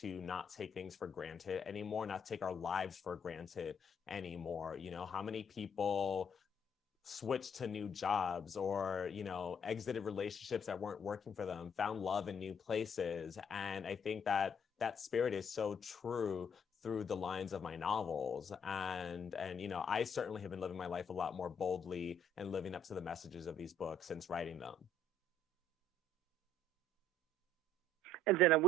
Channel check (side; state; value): both; normal; correlation 0.64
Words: not take things for granted anymore, not take our lives for granted anymore. How many people switched to new jobs or, exited relationships that weren't working for them, found love in new places. And I think that that spirit is so true through the lines of my novels. And I certainly have been living my life a lot more boldly and living up to the messages of these books since writing them. And then